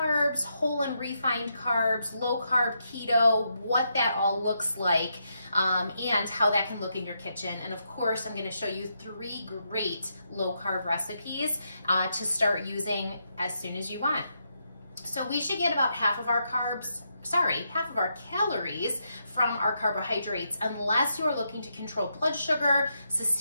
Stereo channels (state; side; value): inverted; both; correlation -0.81